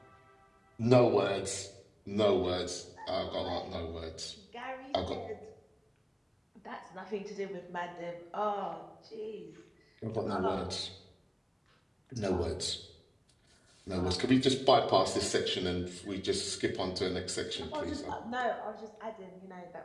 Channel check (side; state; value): both; identical; correlation 1.00